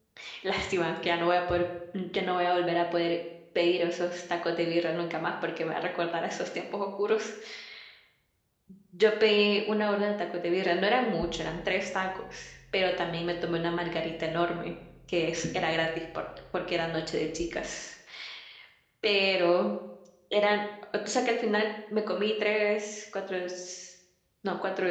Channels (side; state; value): both; identical; correlation 1.00